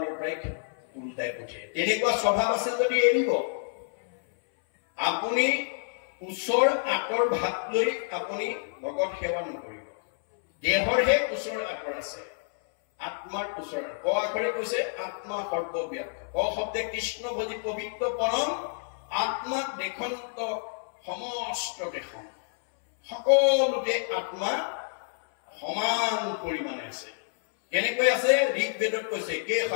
পৰাই উল্টাই পঠিয়ায়। তেনেকুৱা স্বভাৱ আছে যদি এৰিব। আপুনি ওচৰ আঁতৰ ভাগ লৈ আপুনি ভগত সেৱা নকৰিব। দেহৰহে ওচৰ আঁতৰ আছে, আত্মাৰ ওচৰ। ক আখৰে কৈছে আত্মা সৰ্বব্যাপ্ত। ক শব্দে কৃষ্ণ ভজি পবিত্ৰ পৰম, আত্মাক দেশন্ত সমস্ত দেশন। সকলোতে আত্মা সমান পৰিমাণে আছে। কেনেকৈ আছে? ঋগ্বেদত কৈছে কে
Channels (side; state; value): right; silent; 59 dB below the other